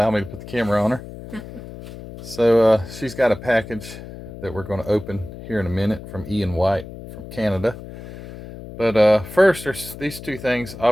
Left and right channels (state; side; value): noise; left; hum, 13 dB below the sound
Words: me to put the camera on her. So she's got a package that we're going to open here in a minute from Ian White from Canada. But first, there's these two things.